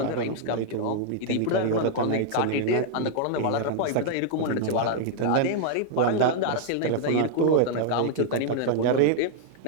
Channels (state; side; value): different; both; correlation 0.00